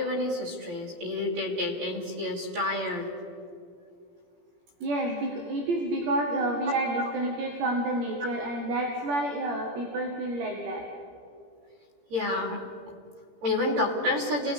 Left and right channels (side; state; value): left; late; 17 ms